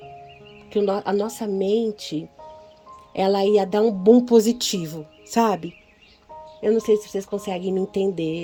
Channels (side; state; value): both; identical; correlation 1.00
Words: que a nossa mente, ela ia dar um boom positivo, sabe? Eu não sei se vocês conseguem me